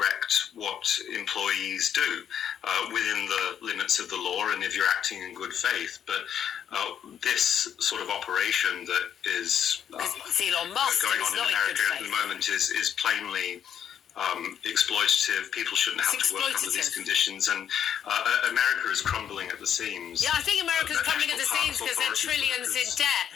what employees do within the limits of the law and if you're acting in good faith. But this sort of operation that is Elon Musk going on in America at the moment is plainly exploitative. People shouldn't have to work under these conditions, and America is crumbling at the seams. Yeah, I think America's crumbling at the seams because they're trillions in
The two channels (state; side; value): quieter; right; 9.1 dB